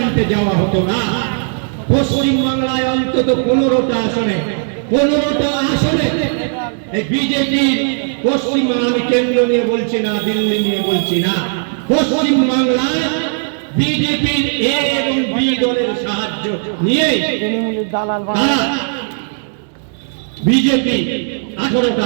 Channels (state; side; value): silent; left; 65 dB below the other